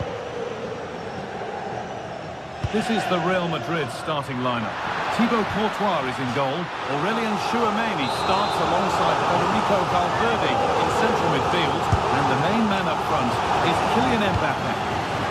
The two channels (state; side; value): identical; both; correlation 1.00